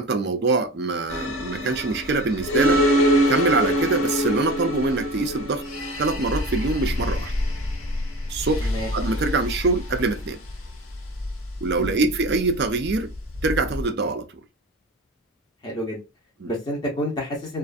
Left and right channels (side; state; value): both; normal; correlation 0.35